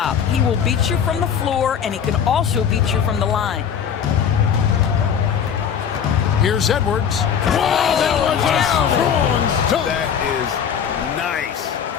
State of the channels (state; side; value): quieter; right; 7.9 dB